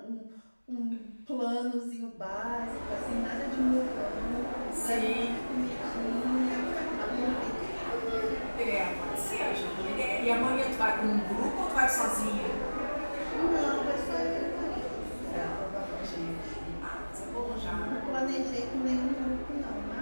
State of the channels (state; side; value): inverted; both; correlation -1.00